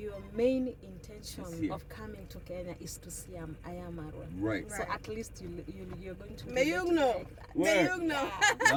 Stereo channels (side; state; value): both; identical; correlation 1.00